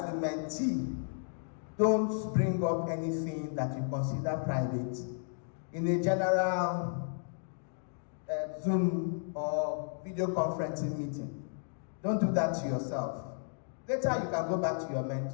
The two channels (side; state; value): right; silent; digital silence